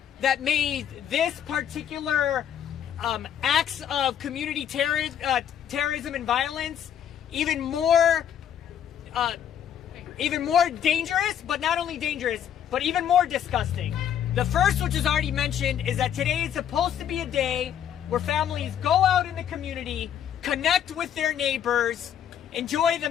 that made this particular acts of community terrorism and violence even more dangerous, but not only dangerous, but even more disgusting. The first, which is already mentioned, is that today is supposed to be a day where families go out in the community, connect with their neighbors, enjoy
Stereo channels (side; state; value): right; quieter; 9.4 dB